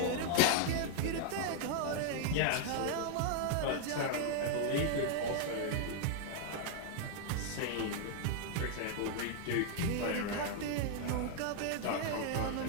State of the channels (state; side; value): different; both; correlation 0.00